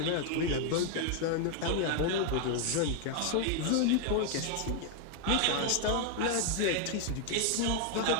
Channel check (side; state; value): both; different; correlation 0.00